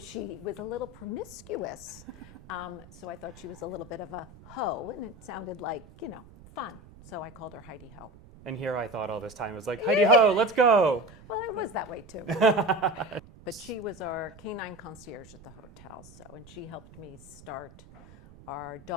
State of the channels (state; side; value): noise; right; rumble, 20 dB below the sound